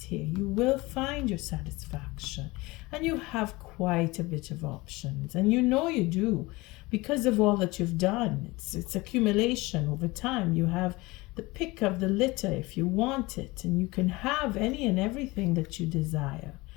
here. You will find your satisfaction, and you have quite a bit of options, and you know you do because of all that you've done. It's accumulation over time. You have the pick of the litter if you want it, and you can have any and everything that you desire.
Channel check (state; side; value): quieter; right; 22.2 dB